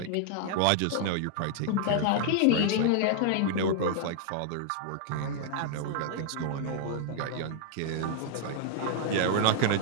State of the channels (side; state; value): both; different; correlation -0.01